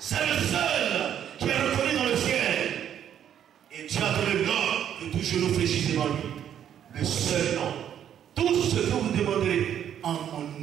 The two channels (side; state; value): left; quieter; 9.7 dB